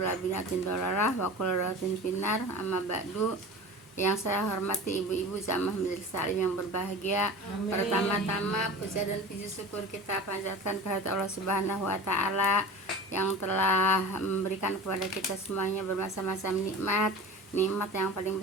bid'atin dhalalah wa kullu dhalalatin finnar. Amma ba'du. Yang saya hormati ibu-ibu jamaah majelis taklim yang berbahagia. Amin. Pertama-tama puja dan puji syukur kita panjatkan kehadirat Allah Subhanahu wa taala yang telah memberikan kepada kita semuanya bermacam-macam nikmat. Nikmat yang paling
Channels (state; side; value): normal; both; correlation 0.35